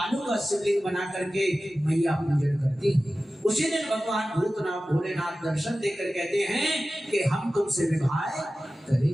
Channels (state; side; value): normal; both; correlation 0.95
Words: का शिवलिंग बना करके मैया पूजन करती है। उसी दिन भगवान भूतनाथ भोलेनाथ दर्शन देकर कहते हैं कि हम तुमसे विवाह